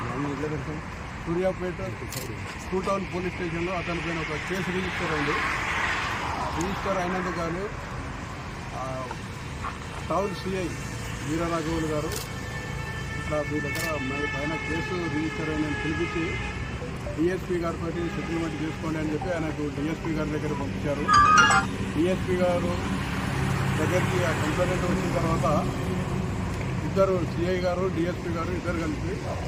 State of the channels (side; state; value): both; identical; correlation 1.00